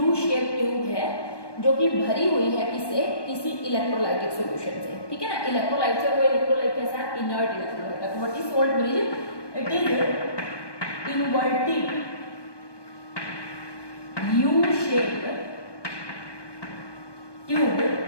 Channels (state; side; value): late; right; 1.2 ms